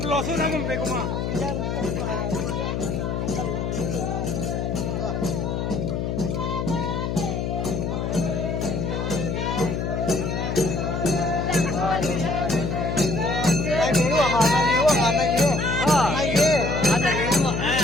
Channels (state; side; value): noise; left; hum, 1 dB below the sound